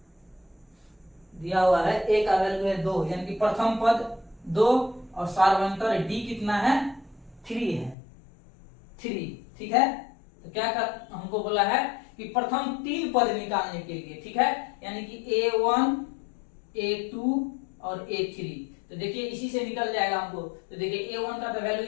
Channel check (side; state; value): right; drops out; at 8.0 s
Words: दिया हुआ है, ए का वैल्यू है 2, यानी कि प्रथम पद 2 और सार्वंतर डी कितना है 3 है, 3, ठीक है। तो क्या हमको बोला है कि प्रथम 3 पद निकालने के लिए, ठीक है, यानी कि a1 a2 और a3। तो देखिए इसी से निकल जाएगा हमको। तो देखिए a1 का तो वैल्यू